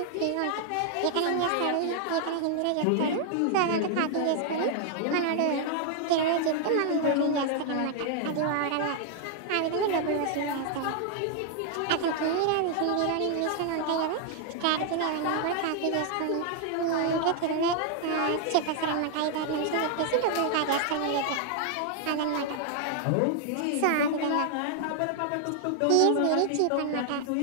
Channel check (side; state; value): both; different; correlation 0.00